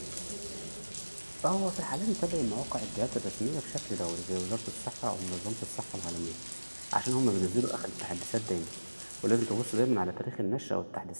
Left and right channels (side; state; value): both; inverted; correlation -1.00